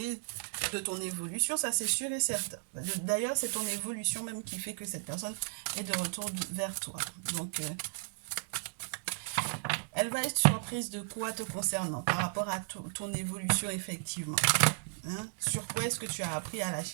de ton évolution, ça c'est sûr et certain. D'ailleurs, c'est ton évolution même qui fait que cette personne est de retour vers toi. Donc, Elle va être surprise de quoi te concernant par rapport à ton évolution effectivement. Hein? Sur quoi est-ce que tu as appris à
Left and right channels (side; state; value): left; silent; digital silence